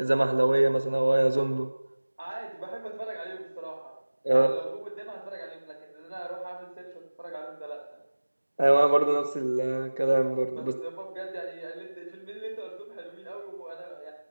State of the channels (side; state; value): both; inverted; correlation -1.00